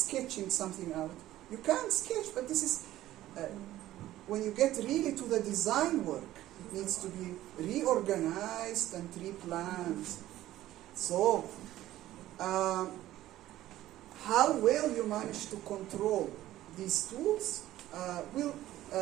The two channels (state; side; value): quieter; left; 14.5 dB